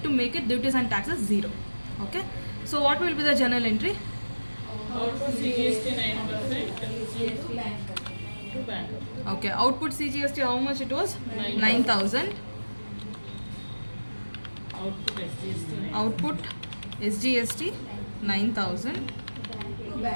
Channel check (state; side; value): inverted; both; correlation -1.00